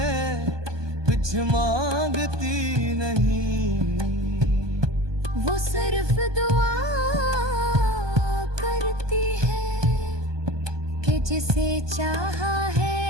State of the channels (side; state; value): left; late; 1.2 ms